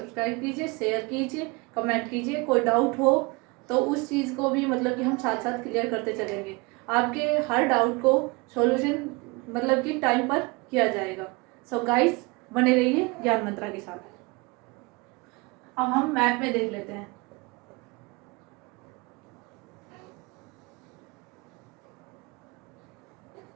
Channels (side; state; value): left; quieter; 26.6 dB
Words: कीजिए, शेयर कीजिए, कमेंट कीजिए। कोई डाउट हो तो उस चीज़ को भी मतलब कि हम साथ साथ क्लियर करते चलेंगे। आपके हर डाउट को सॉल्यूशन मतलब कि टाइम पर किया जाएगा। सो गाइस बने रहिए ज्ञान मंत्रा के साथ। अब हम मैप में देख लेते हैं।